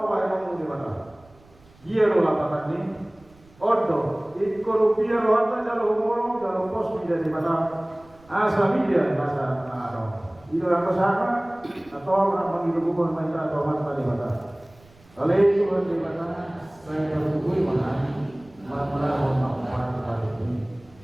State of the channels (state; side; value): noise; right; rumble, 27 dB below the sound